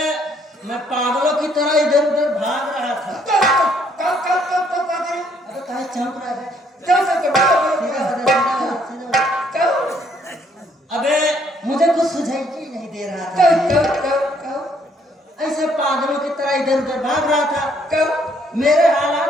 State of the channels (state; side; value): normal; both; correlation 0.66